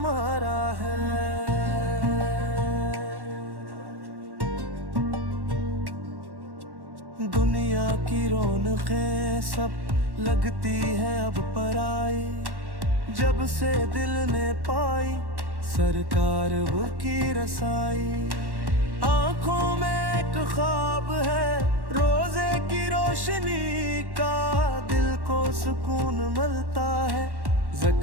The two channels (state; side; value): late; left; 1.1 ms